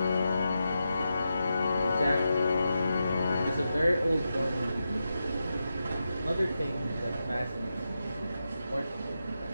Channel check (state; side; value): inverted; both; correlation -0.88